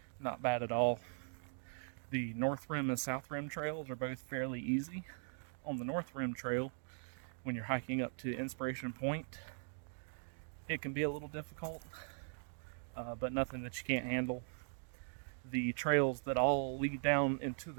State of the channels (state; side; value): silent; left; 51 dB below the other